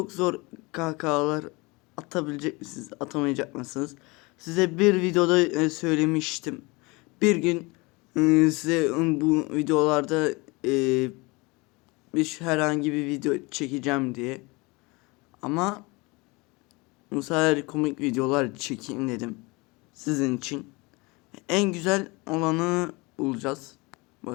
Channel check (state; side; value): quieter; right; 25.5 dB